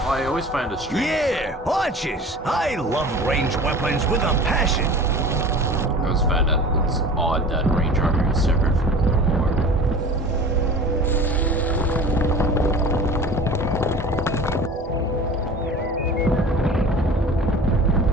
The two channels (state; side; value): normal; both; correlation 0.40